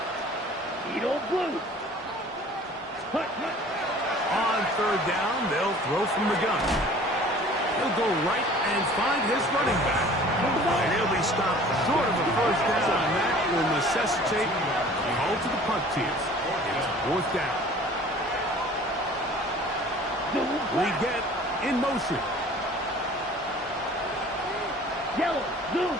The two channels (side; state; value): both; normal; correlation 0.48